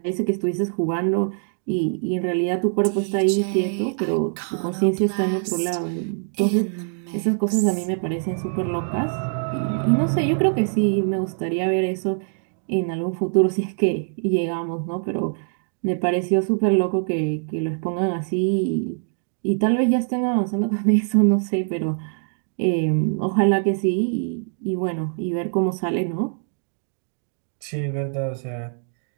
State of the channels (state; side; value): silent; left; 63 dB below the other